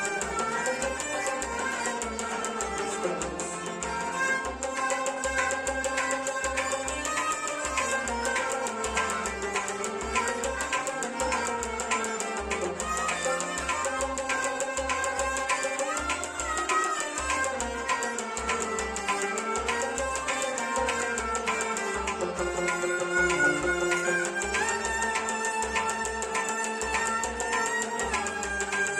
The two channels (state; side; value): identical; both; correlation 1.00